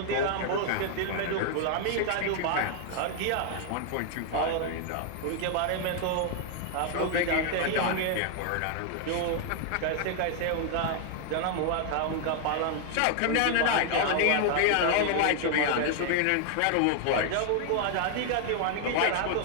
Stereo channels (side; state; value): both; different; correlation 0.00